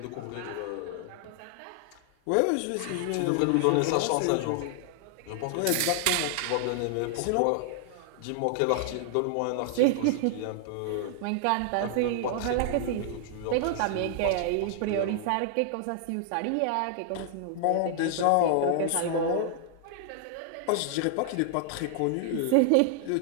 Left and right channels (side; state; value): both; different; correlation 0.00